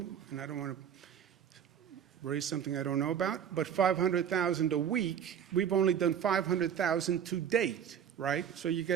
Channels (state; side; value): quieter; left; 8.7 dB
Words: and I don't want to raise something I don't know about. But 500,000 a week, we've only done 500,000 to date, right? So you